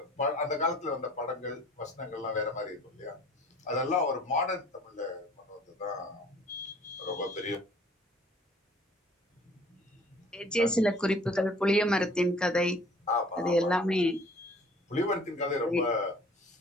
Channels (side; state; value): both; normal; correlation 0.52